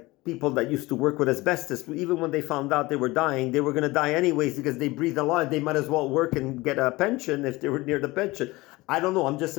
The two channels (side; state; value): right; quieter; 20.9 dB